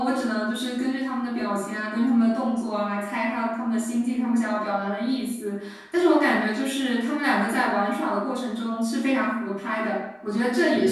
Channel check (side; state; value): both; identical; correlation 1.00